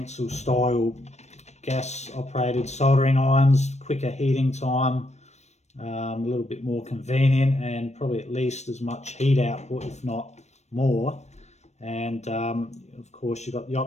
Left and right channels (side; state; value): right; late; 0.32 ms